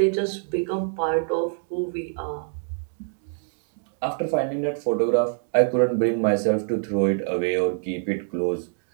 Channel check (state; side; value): silent; left; digital silence